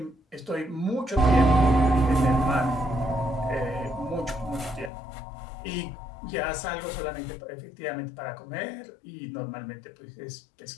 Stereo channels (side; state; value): right; drops out; at 4.9 s